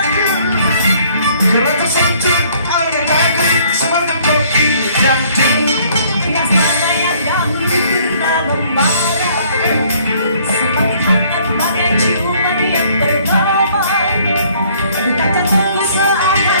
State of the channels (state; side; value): inverted; both; correlation -0.60